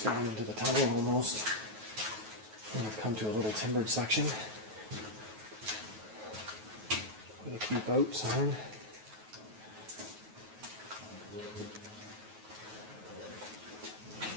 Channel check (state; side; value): late; left; 9.3 ms